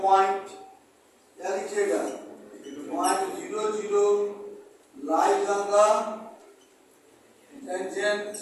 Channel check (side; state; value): both; identical; correlation 1.00